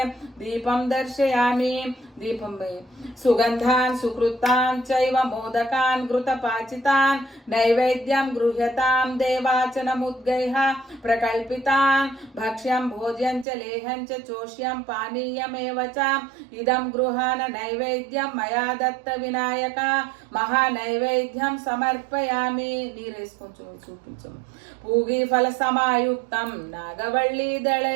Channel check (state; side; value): drops out; left; at 13.5 s